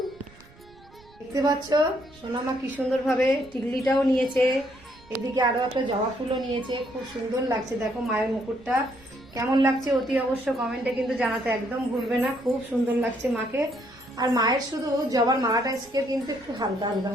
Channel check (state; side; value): noise; right; rumble, 25 dB below the sound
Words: দেখতে পাচ্ছ সোনামা কি সুন্দরভাবে টিকলিটাও নিয়েছে, এদিকে আরো একটা জবা ফুলও নিয়েছে, খুব সুন্দর লাগছে। দেখো মায়ের মুকুটটা কেমন লাগছে অতি অবশ্য কমেন্টে কিন্তু জানাতে একদম ভুলবে না, খুব সুন্দর লাগছে মাকে। আর মায়ের শুধু জবার মালাটা আজকে কিন্তু একটু হালকা হালকা